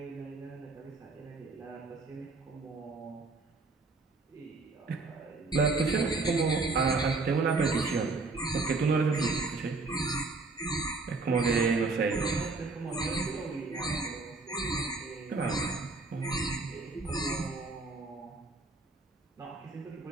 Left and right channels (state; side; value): quieter; left; 3.7 dB